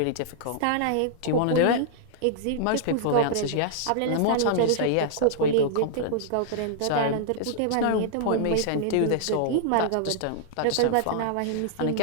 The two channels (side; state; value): both; different; correlation -0.01